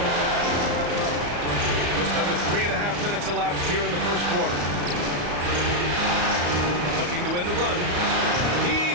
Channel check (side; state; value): left; late; 34 ms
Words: Just under 3.5 minutes elapsed here in the first quarter. Looking to win the run.